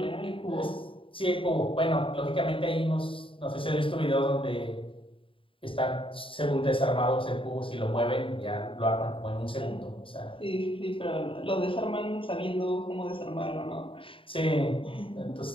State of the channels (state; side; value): late; right; 0.25 ms